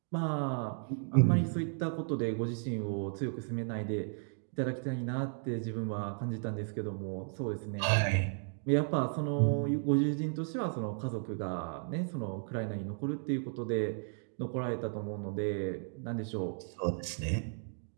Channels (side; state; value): left; silent; 55 dB below the other